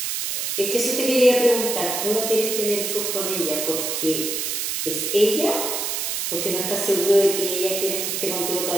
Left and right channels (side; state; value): right; noise; hiss, 2 dB below the sound